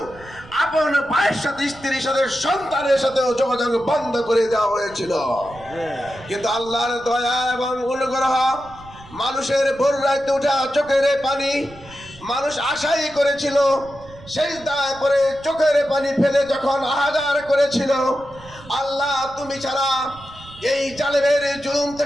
আপন ভাইয়ের সাথে স্ত্রীর সাথে সন্তানের সাথেও যোগাযোগ বন্ধ করে দেওয়া হয়েছিল। কিন্তু আল্লাহর দয়া এবং অনুগ্রহ, মানুষের ভোর রাতে উঠা চোখের পানি মানুষ আশাই করেছিল, সেজদায় পড়ে চোখের পানি ফেলে যখন আহাজার করেছিল, আল্লাহ তুমি ছাড়া এই জালেমের জুলুম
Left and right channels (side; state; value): right; noise; rumble, 20 dB below the sound